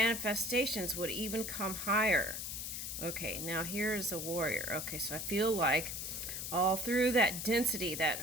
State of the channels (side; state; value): left; noise; hiss, 5 dB below the sound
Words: would even come higher. Okay, now here's a warrior. Okay, so I feel like all through that density, that